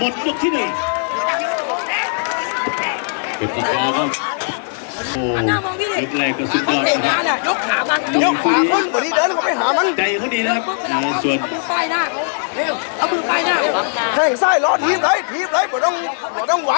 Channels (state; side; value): silent; right; digital silence